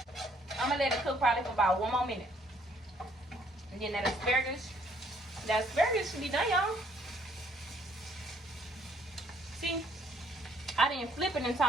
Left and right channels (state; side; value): normal; both; correlation 0.64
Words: I'm going to let it cook probably for about 1 more minute. And then that asparagus should be done, y'all. See, I didn't flip it in